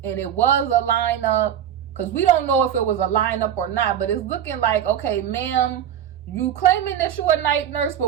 and it was a lineup, because we don't know if it was a lineup or not, but it's looking like, okay, ma'am, you claiming that you a night nurse,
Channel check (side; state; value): left; quieter; 9.9 dB